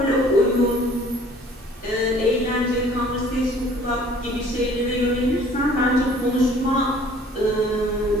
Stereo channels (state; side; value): normal; both; correlation 0.53